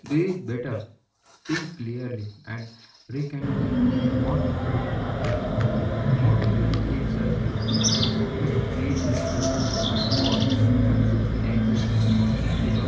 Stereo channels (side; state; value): both; identical; correlation 1.00